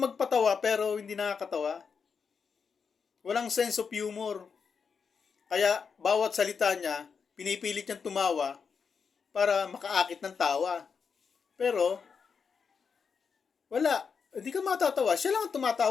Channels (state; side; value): quieter; right; 5.9 dB